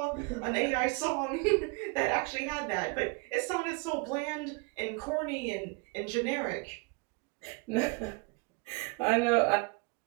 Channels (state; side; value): quieter; left; 29.6 dB